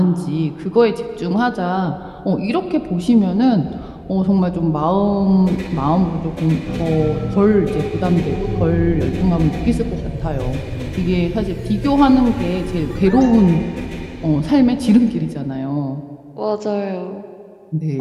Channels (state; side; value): identical; both; correlation 1.00